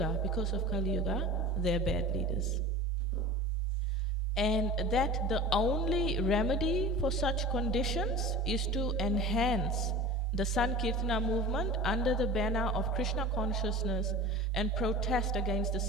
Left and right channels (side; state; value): both; normal; correlation 0.36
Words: because of Kali Yuga, they're bad leaders. And that the only remedy for such conditions is to enhance the Sankirtana movement under the banner of Krishna consciousness and protest against the